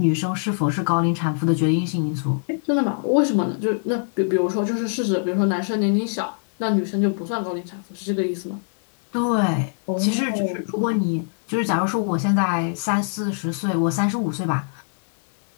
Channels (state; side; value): silent; right; 64 dB below the other